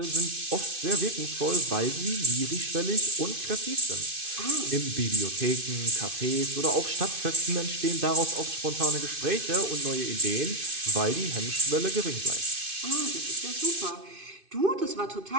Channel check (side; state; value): left; late; 2.5 ms